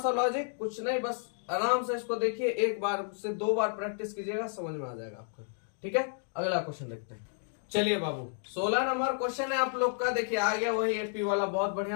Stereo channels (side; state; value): right; silent; digital silence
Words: लॉजिक, कुछ नहीं, बस आराम से इसको देखिए, एक बार से 2 बार प्रैक्टिस कीजिएगा समझ में आ जाएगा आपको। ठीक है, अगला क्वेश्चन देखते हैं। चलिए बाबू 16 नंबर क्वेश्चन है आप लोग का, देखिए आ गया वही एपी वाला, बहुत